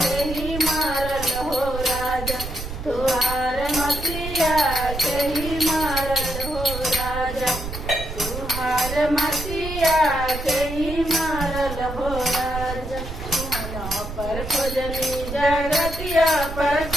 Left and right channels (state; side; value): noise; right; rumble, 8 dB below the sound